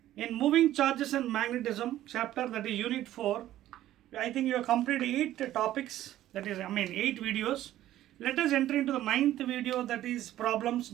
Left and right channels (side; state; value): left; quieter; 13.5 dB